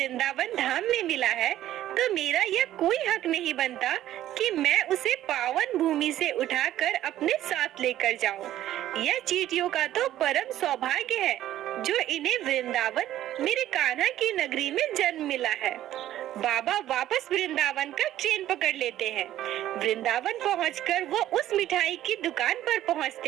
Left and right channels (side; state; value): left; quieter; 13.0 dB